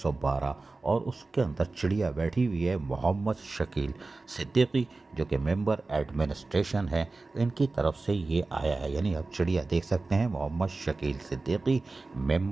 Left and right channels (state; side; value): quieter; left; 3.5 dB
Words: और उसके अंदर चिड़िया बैठी हुई है मोहम्मद शकील सिद्दीकी जो कि मेंबर एडमिनिस्ट्रेशन है। इनकी तरफ से ये आया है, यानी आप चिड़िया देख सकते हैं मोहम्मद शकील सिद्दीकी